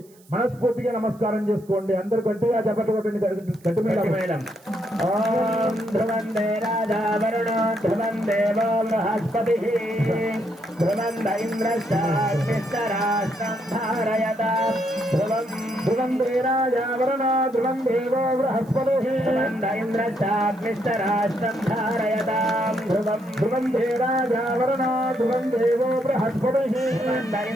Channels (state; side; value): noise; right; hiss, 29 dB below the sound